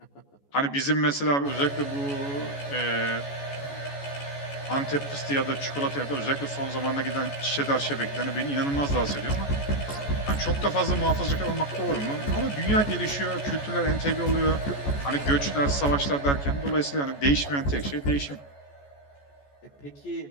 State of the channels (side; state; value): right; late; 14 ms